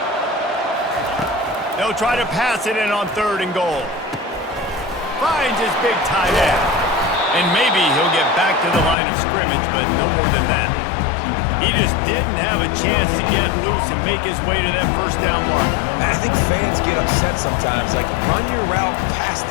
They'll try to pass it in on 3rd and goal. Finds his big tight end. And maybe he'll get back to the line of scrimmage, but no more than that. He just didn't have a chance to get loose and make his way to that first down mark. I think fans get upset sometimes. Like, run your route past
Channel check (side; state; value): right; drops out; at 9.0 s